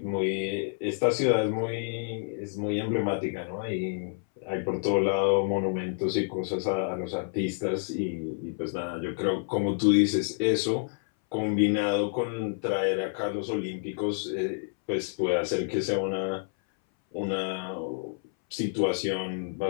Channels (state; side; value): silent; right; 59 dB below the other